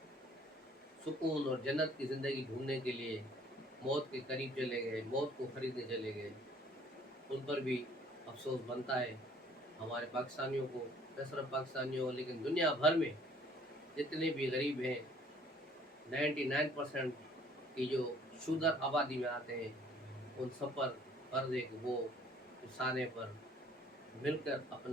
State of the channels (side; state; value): both; normal; correlation 0.57